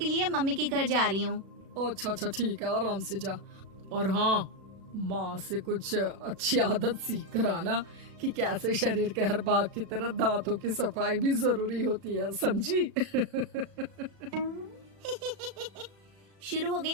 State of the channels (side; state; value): left; late; 36 ms